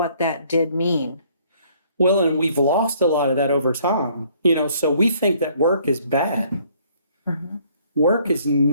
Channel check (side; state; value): both; inverted; correlation -0.62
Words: that did mean. Well, and we've lost a lot of that over time. So we think that work is bad. Mhm. Work is